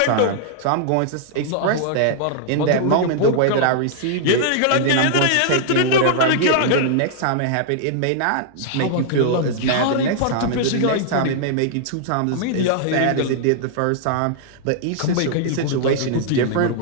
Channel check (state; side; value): different; both; correlation -0.01